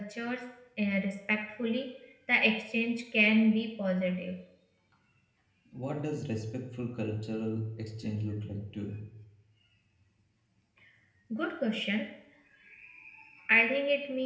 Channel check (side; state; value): both; identical; correlation 1.00